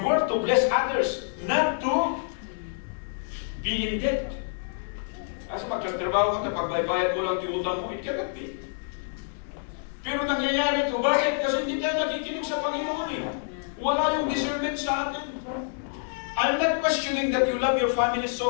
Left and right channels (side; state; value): right; silent; digital silence